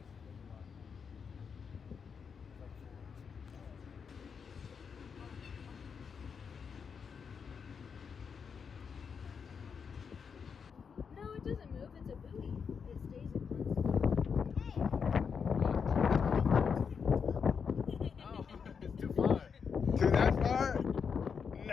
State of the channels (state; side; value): quieter; right; 6.3 dB